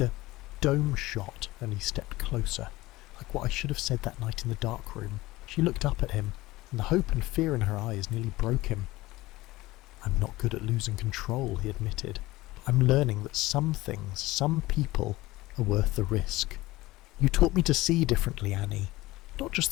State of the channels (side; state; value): right; quieter; 18.8 dB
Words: shot, and he stepped closer, like what I should have said that night in the dark room. She looked up at him, and the hope and fear in her eyes nearly broke him. I'm not good at losing control, he admitted. I'm learning that some things, some people, are worth the risk. You taught me to see differently, Annie, not just